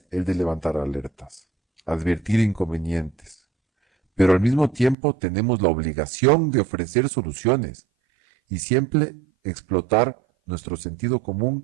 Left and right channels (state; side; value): drops out; left; at 5.0 s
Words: el de levantar alertas, advertir inconvenientes, pero al mismo tiempo tenemos la obligación de ofrecer soluciones y siempre explotar nuestro sentido